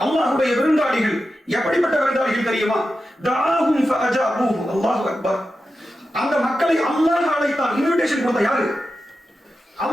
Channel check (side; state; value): both; normal; correlation 0.91